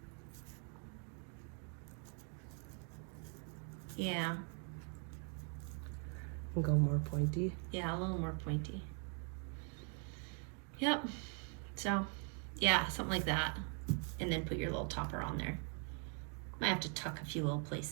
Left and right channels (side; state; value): left; quieter; 38.8 dB